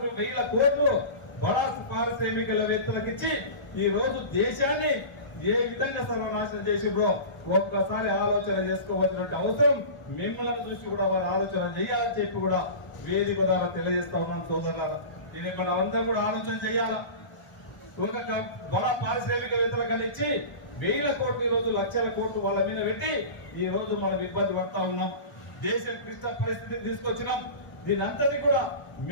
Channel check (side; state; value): right; late; 1.0 ms